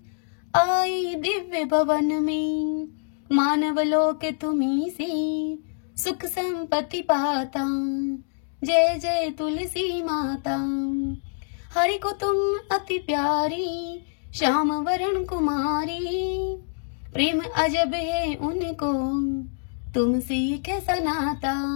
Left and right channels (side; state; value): right; silent; digital silence